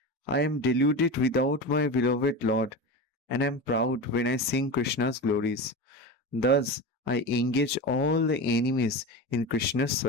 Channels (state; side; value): normal; both; correlation 0.25